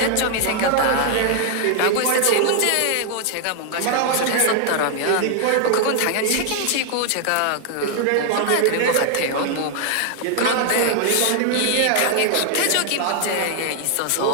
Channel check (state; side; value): different; both; correlation 0.00